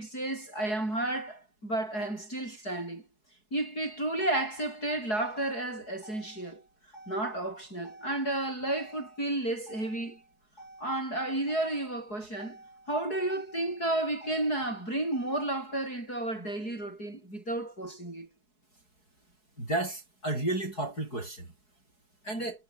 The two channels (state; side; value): late; right; 4.7 ms